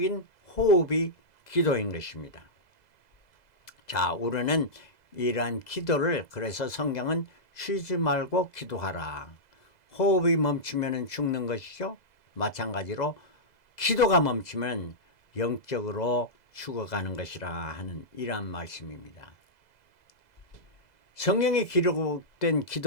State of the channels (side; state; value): right; late; 2.0 ms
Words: 호흡이 기도인 것입니다. 자, 우리는 이러한 기도를, 그래서 성경은 쉬지 말고 기도하라. 호흡이 멈추면 죽는 것이죠. 마찬가지로 기도가 멈추면 영적으로 죽어가는 것이라 하는 이러한 말씀입니다. 성경에 기록된